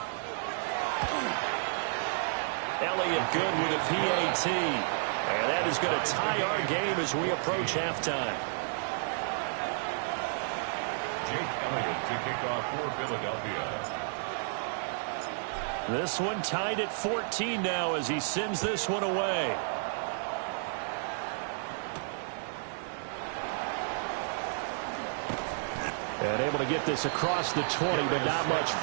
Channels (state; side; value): silent; left; digital silence